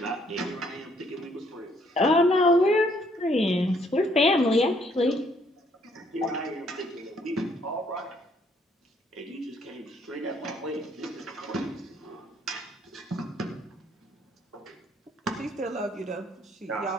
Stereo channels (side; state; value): both; normal; correlation 0.67